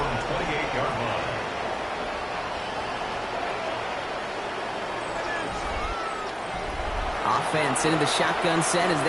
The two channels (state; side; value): identical; both; correlation 1.00